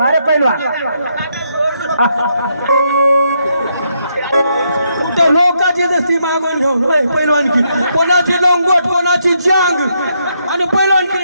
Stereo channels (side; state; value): both; inverted; correlation -0.77